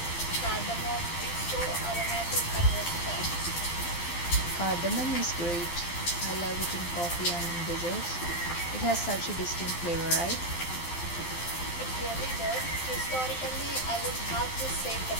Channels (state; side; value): late; right; 12 ms